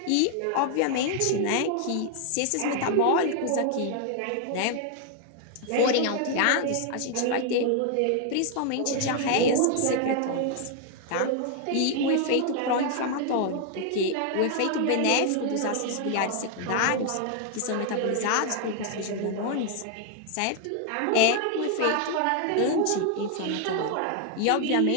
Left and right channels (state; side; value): different; both; correlation 0.00